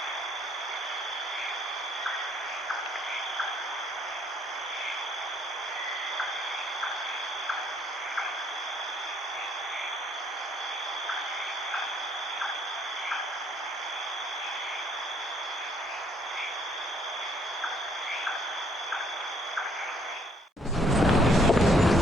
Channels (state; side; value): normal; both; correlation 0.65